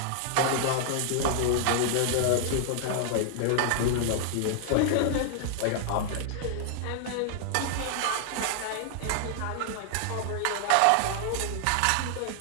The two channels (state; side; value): different; both; correlation 0.00